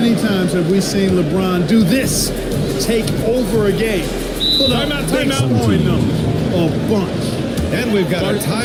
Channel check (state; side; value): identical; both; correlation 1.00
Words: times have we seen LeBron do this? Take over a game. Put up big scoring numbers. A bunch. And we've got a